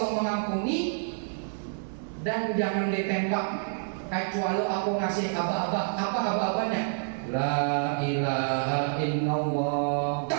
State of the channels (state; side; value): silent; left; digital silence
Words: mengampuni, dan jangan ditembak kecuali aku ngasih aba-aba. Apa aba-abanya? La ilaha illallah.